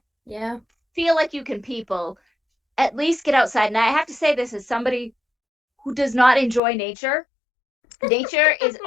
feel like you can people, at least get outside. And I have to say this as somebody who does not enjoy nature. Nature is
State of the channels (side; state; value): right; drops out; at 6.6 s